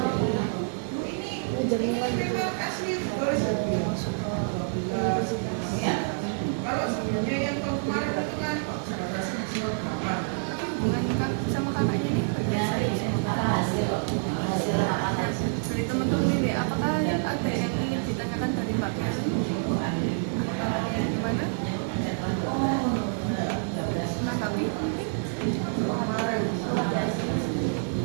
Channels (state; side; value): silent; left; digital silence